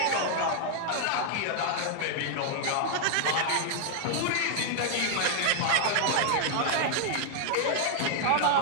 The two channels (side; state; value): both; different; correlation 0.00